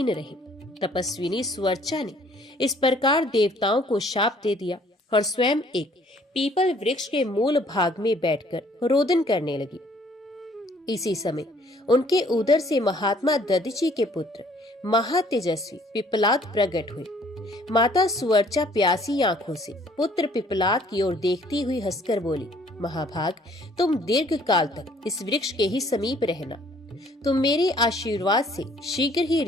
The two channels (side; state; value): both; normal; correlation 0.59